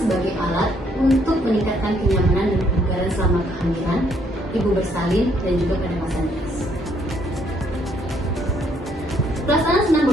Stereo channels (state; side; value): normal; both; correlation 0.69